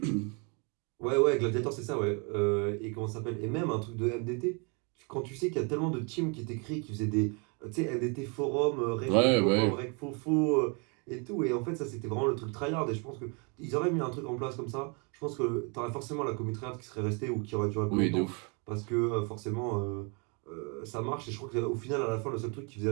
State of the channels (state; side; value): quieter; left; 34.0 dB